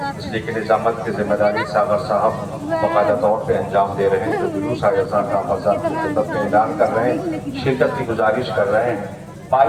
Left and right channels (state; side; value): identical; both; correlation 1.00